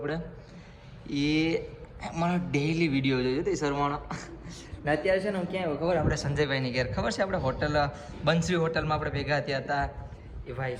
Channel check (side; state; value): both; identical; correlation 1.00